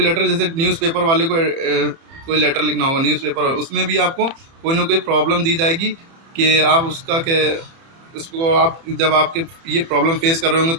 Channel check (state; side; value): late; left; 30 ms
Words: लेटर, जैसे न्यूज़पेपर वाले को कोई लेटर लिखना होगा न्यूज़पेपर, उसमें भी आपको कोई ना कोई प्रॉब्लम दी जाएगी कि आप उसका क्या, उसको आप जब आपके ये प्रॉब्लम फेस कर रहे होंगे